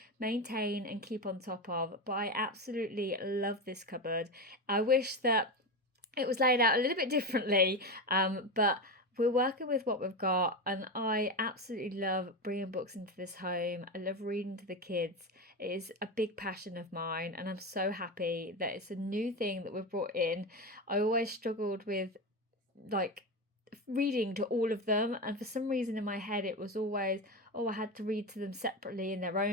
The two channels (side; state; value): both; normal; correlation 0.18